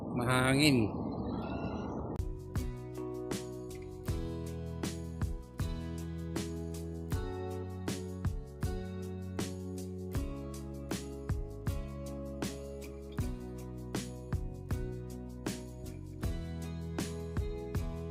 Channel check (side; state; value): both; identical; correlation 1.00